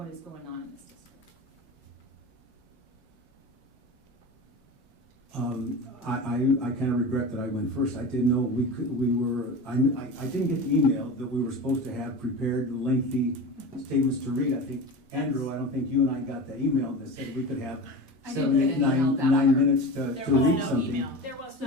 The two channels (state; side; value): normal; both; correlation 0.30